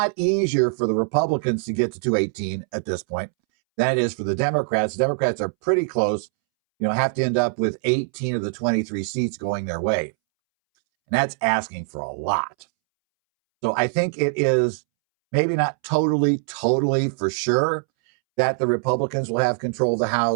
easier for the Republicans to get to 218 at this point than it is for the Democrats. The Democrats are pretty close, have to end up with 18 of the 23 seats going their way. And that's asking for a lot. So I think it is maybe not totally for sure that the Republicans will have control of the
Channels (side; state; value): left; silent; 64 dB below the other